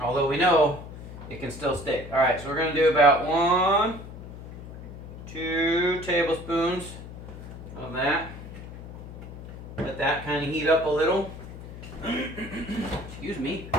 Although we know it can still stick. Alright, so we're going to do about 1, 2 tablespoons of that. Let that kind of heat up a little. Excuse me.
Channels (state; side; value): noise; left; hum, 13 dB below the sound